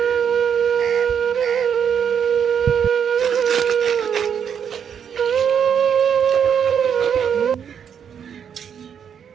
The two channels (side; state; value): left; quieter; 7.9 dB